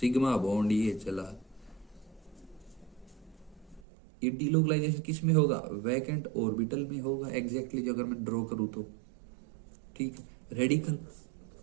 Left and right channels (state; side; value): drops out; left; at 3.8 s